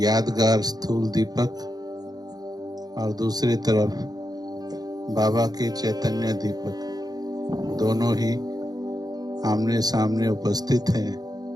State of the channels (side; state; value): left; late; 0.19 ms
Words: स्थूल दीपक और दूसरी तरफ बाबा के चैतन्य दीपक, दोनों ही आमने सामने उपस्थित हैं।